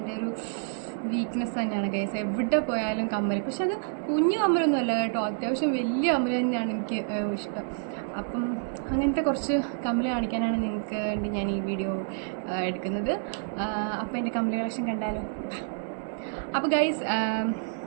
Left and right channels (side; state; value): left; silent; digital silence